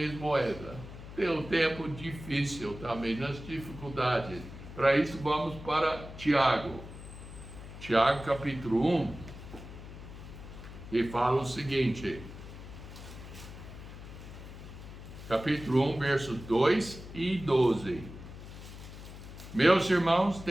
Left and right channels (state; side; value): noise; left; hum, 13 dB below the sound